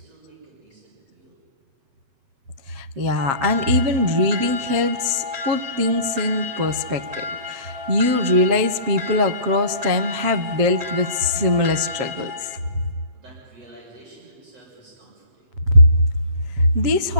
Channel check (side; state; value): left; late; 7.4 ms